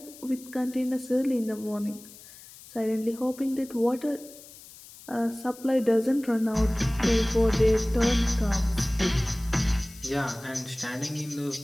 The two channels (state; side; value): noise; left; hiss, 19 dB below the sound